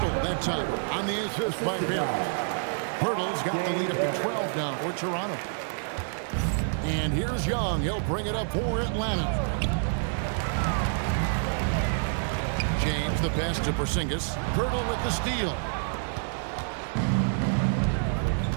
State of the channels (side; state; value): left; silent; 59 dB below the other